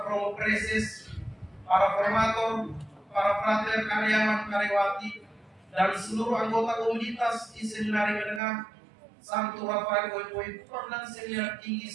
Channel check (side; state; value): left; drops out; at 8.4 s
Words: Romo Preses, para formator, para frater karyawan karyawati, dan seluruh anggota komunitas di Seminari Menengah Santo Rafael Boy Kupang dan Seminar Tinggi